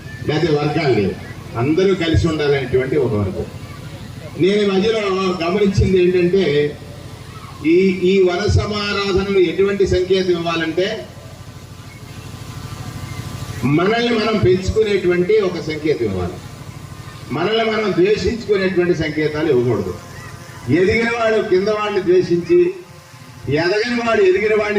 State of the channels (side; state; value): both; identical; correlation 1.00